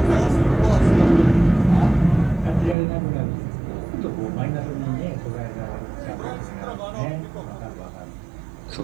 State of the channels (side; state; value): left; drops out; at 2.8 s